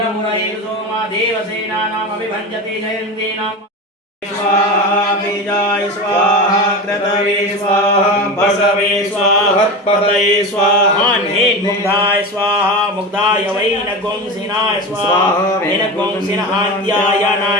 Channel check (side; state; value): both; normal; correlation 0.25